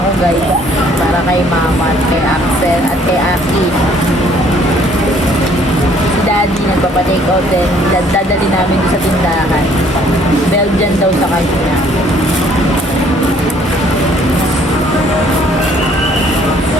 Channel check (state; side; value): normal; both; correlation 0.61